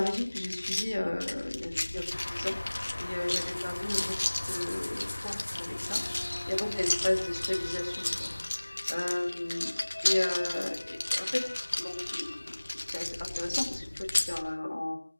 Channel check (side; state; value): both; inverted; correlation -1.00